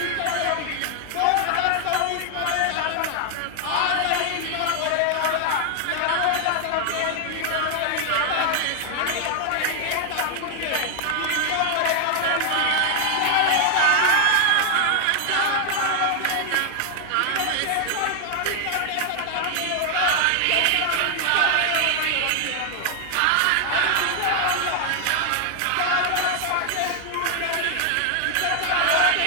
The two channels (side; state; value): both; different; correlation 0.00